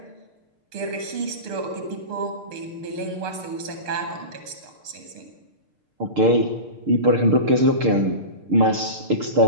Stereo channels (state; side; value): late; left; 6.7 ms